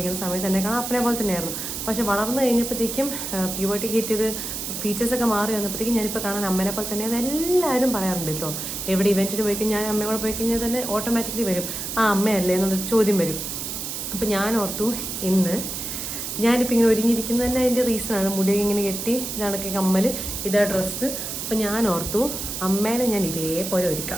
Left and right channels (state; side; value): noise; right; hiss, 5 dB below the sound